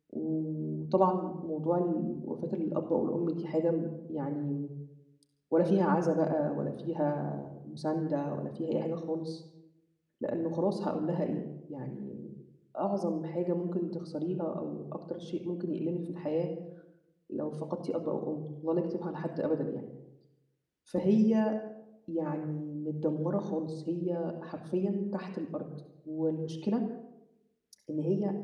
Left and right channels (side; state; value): both; identical; correlation 1.00